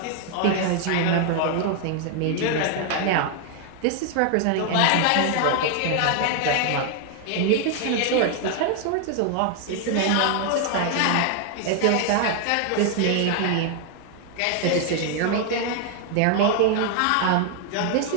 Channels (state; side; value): different; both; correlation 0.00